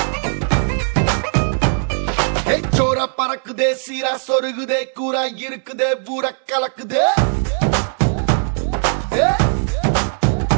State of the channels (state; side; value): silent; left; 67 dB below the other